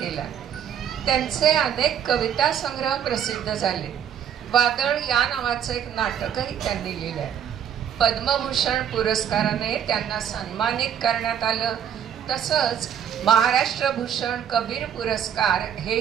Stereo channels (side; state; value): left; quieter; 9.1 dB